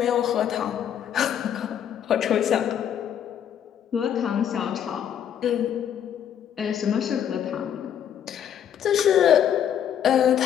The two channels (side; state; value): right; quieter; 9.4 dB